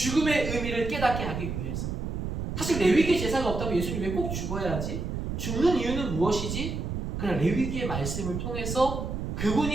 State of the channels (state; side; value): noise; right; rumble, 3 dB below the sound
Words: 의미를 깨닫게 하기 위해서. 사실 레위기의 제사가 없다면 예수님이 왜 꼭 죽어야 하지? 죽는 이유는 무엇이지? 그러나 레위기의 말씀을 통해서